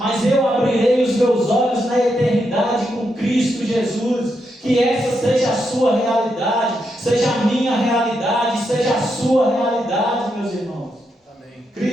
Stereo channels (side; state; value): both; normal; correlation 0.82